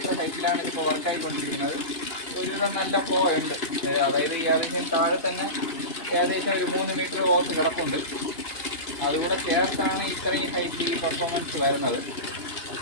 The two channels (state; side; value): late; right; 2.8 ms